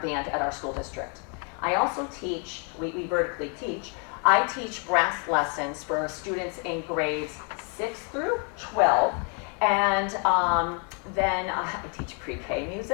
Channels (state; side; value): quieter; right; 37.8 dB